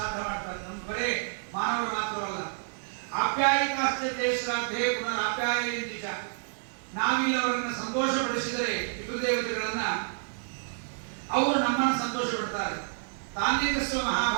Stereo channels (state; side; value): silent; left; digital silence